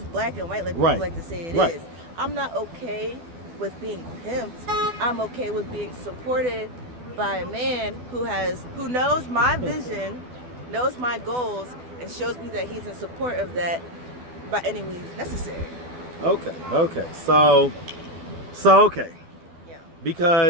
black and white like people like to say it is. I'm not okay with being pimped. I'm okay with being supported by a man who knows my vision, knows my goals, and shows me that he's in support of that by any means necessary. Okay. So okay. Yeah.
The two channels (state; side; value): late; left; 12 ms